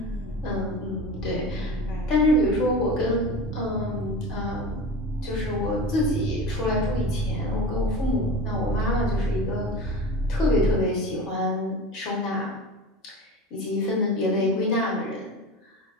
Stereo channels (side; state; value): both; normal; correlation 0.31